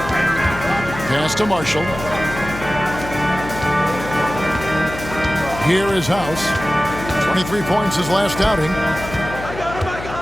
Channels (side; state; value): left; noise; hum, 10 dB below the sound